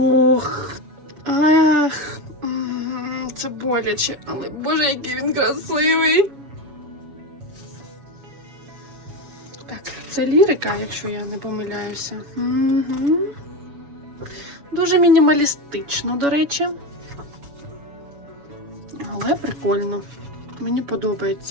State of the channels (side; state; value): left; late; 7.1 ms